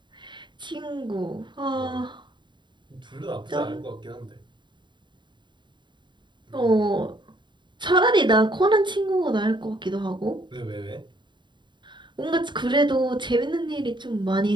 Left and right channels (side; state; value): left; late; 0.23 ms